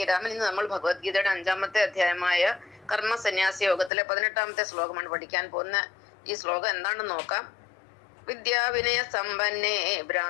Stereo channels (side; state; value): right; drops out; at 3.9 s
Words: രാമൻ. ഇന്ന് നമ്മൾ ഭഗവത്ഗീതയുടെ 5-ാമത്തെ അധ്യായമായ കർമ്മ സന്യാസി യോഗത്തിലെ 18-ാമത്തെ ശ്ലോകമാണ് പഠിക്കാൻ പോകുന്ന. ഈ ശ്ലോകം എന്താണെന്ന് നോക്കാം. വിദ്യാവിനയ സമ്പന്നേ